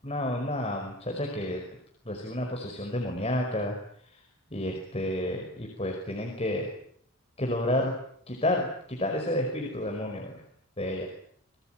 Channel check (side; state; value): both; normal; correlation 0.30